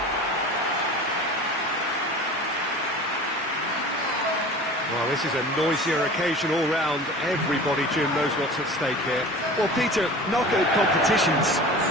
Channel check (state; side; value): normal; both; correlation 0.38